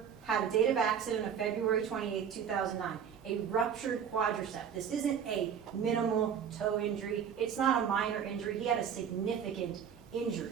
had a date of accident of February 28, 2009, a ruptured quadricep. This isn't a minimal toe injury. It's not a minor injury. He had a significant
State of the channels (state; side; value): quieter; left; 7.9 dB